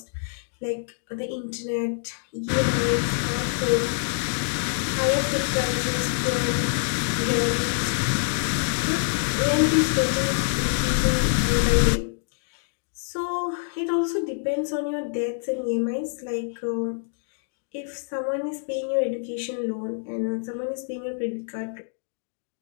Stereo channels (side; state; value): right; silent; digital silence